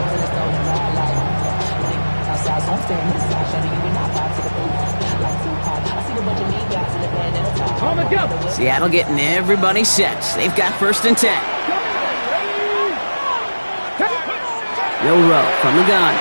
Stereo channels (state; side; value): inverted; both; correlation -1.00